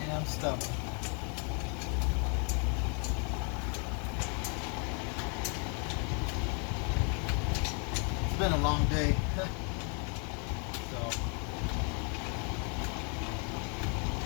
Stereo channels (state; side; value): quieter; right; 37.7 dB